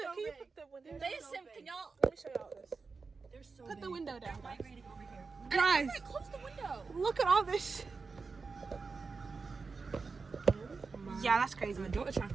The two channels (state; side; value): quieter; left; 4.5 dB